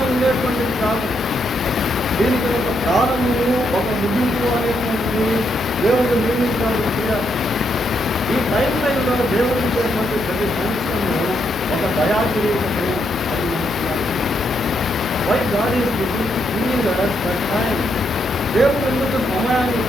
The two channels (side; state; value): right; noise; hum, 18 dB below the sound